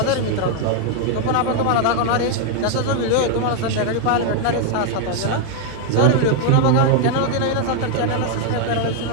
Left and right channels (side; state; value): both; different; correlation 0.00